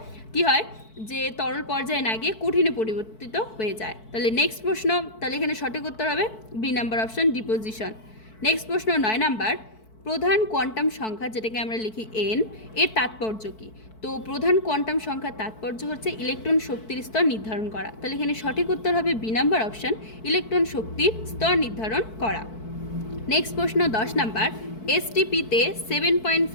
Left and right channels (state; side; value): late; right; 4.6 ms